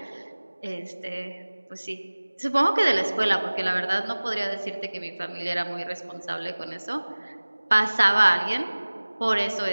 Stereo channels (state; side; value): inverted; both; correlation -1.00